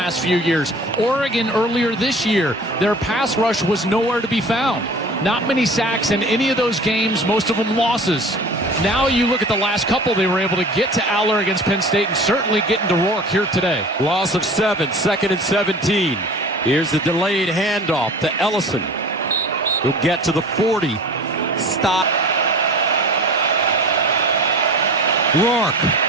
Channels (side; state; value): both; normal; correlation 0.40